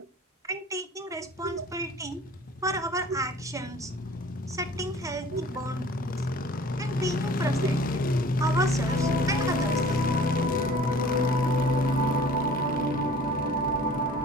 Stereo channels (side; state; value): both; normal; correlation 0.47